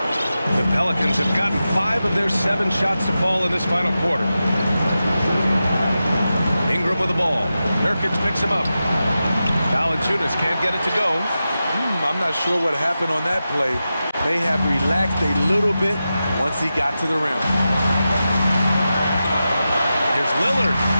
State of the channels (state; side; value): inverted; both; correlation -0.92